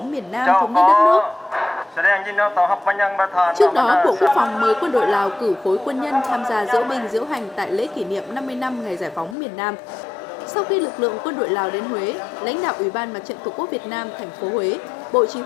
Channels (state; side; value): drops out; right; at 9.3 s